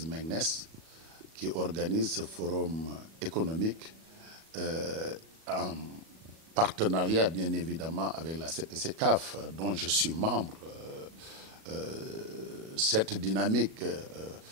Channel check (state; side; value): late; left; 37 ms